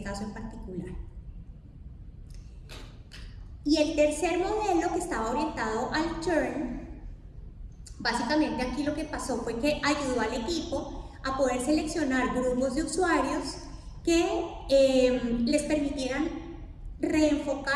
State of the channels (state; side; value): identical; both; correlation 1.00